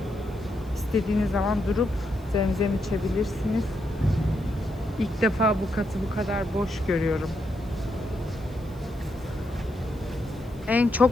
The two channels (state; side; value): noise; left; hiss, 29 dB below the sound